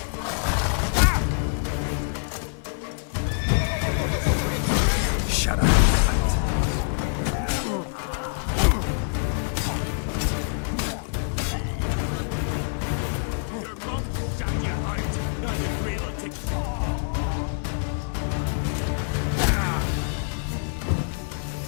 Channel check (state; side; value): silent; right; 56 dB below the other